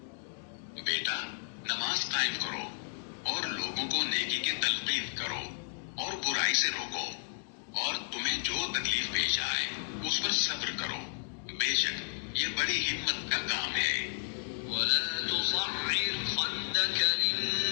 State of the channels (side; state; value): right; silent; digital silence